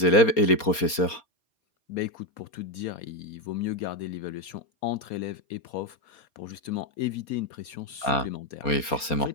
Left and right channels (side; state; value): right; late; 4.3 ms